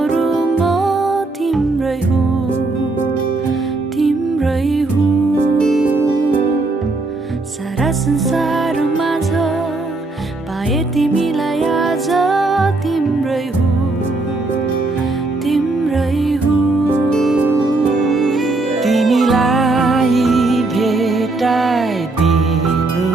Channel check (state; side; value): quieter; left; 3.2 dB